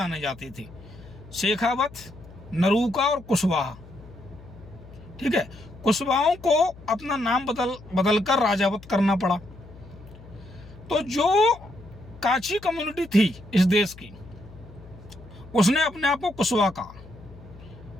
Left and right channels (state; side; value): noise; left; hum, 19 dB below the sound